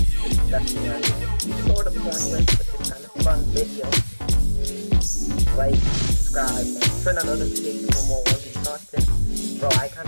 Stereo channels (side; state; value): both; inverted; correlation -1.00